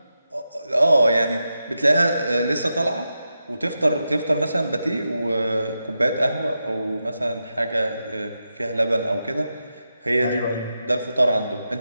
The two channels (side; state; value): both; inverted; correlation -0.88